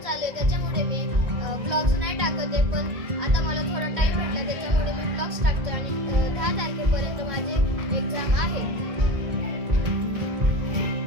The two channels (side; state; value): left; late; 1.9 ms